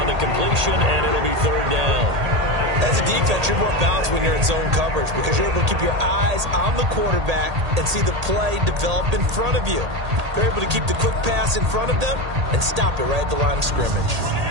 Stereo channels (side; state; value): left; late; 1.8 ms